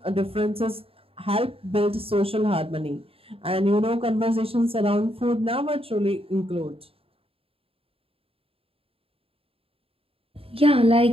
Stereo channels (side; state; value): left; late; 0.27 ms